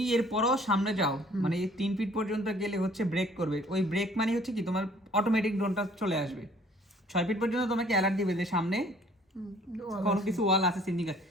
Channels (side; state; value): both; normal; correlation 0.57